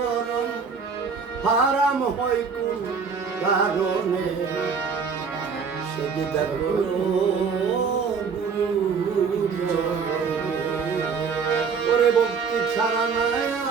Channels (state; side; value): quieter; left; 5.7 dB